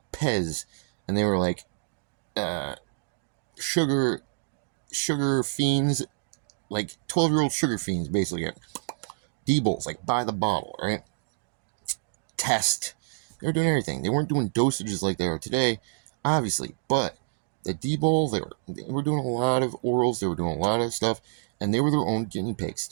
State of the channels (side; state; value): left; silent; digital silence